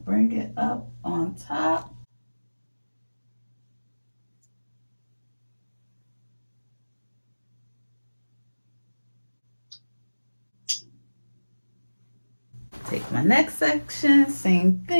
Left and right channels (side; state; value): both; inverted; correlation -1.00